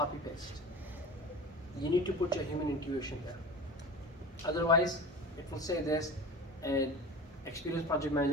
paste. You need to put your human intuition there. Otherwise, it will say this, and experienced project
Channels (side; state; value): both; normal; correlation 0.34